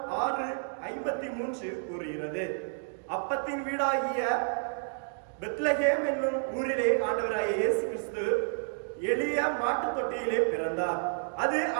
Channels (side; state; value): left; silent; digital silence